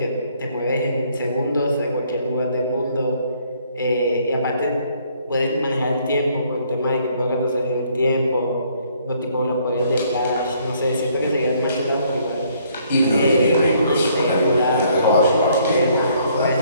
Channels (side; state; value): both; inverted; correlation -0.65